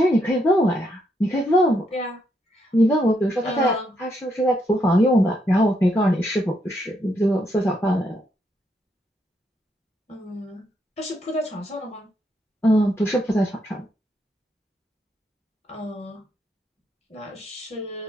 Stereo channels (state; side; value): normal; both; correlation 0.77